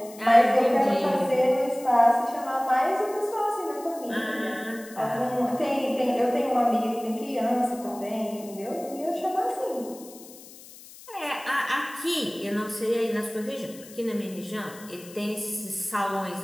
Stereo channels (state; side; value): noise; left; hiss, 19 dB below the sound